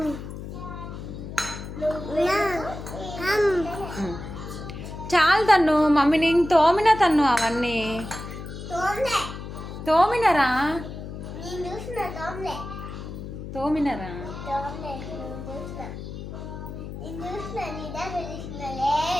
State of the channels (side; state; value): left; noise; hum, 9 dB below the sound